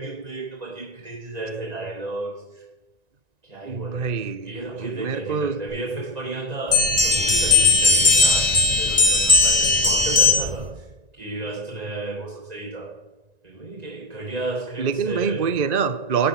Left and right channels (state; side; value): late; left; 1.9 ms